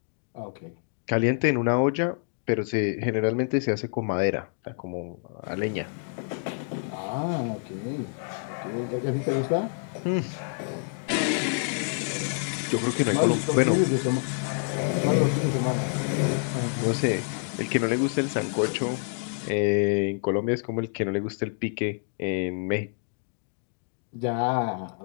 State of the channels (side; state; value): right; silent; 60 dB below the other